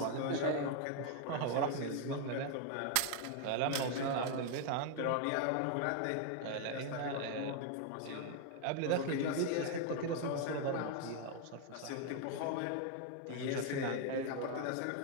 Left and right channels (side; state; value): both; different; correlation 0.00